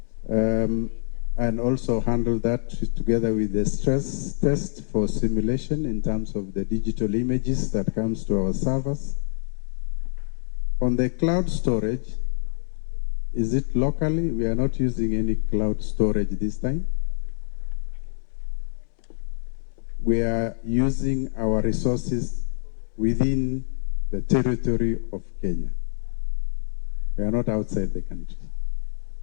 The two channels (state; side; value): silent; right; 61 dB below the other